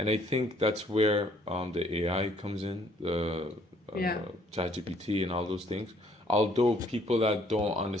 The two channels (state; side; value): normal; both; correlation 0.63